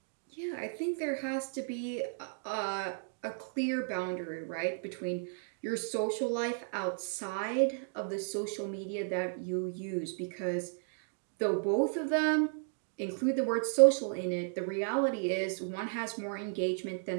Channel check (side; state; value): left; silent; digital silence